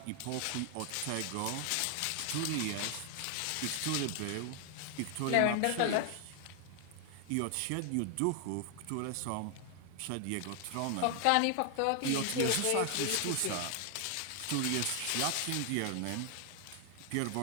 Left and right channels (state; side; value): different; both; correlation 0.00